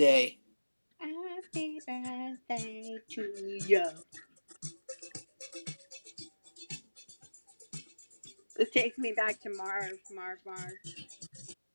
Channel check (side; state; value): both; inverted; correlation -1.00